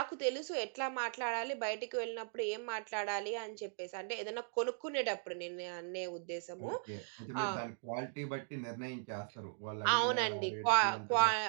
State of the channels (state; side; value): silent; left; digital silence